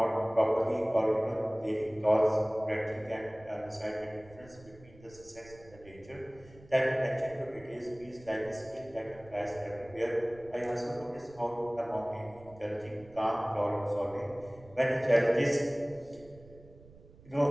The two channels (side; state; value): right; noise; rumble, 22 dB below the sound